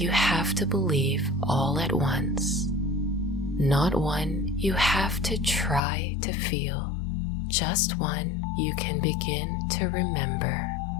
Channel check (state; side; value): drops out; right; at 5.8 s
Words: have to believe all at once, not one you have to try to feel, just one you can begin to remember.